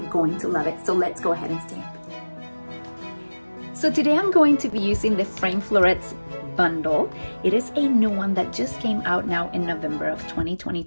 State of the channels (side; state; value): both; inverted; correlation -1.00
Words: going to love it. So let's go ahead and stamp. So today I'm going to be using the frame florets bundle. It is a new one that just came out now in November of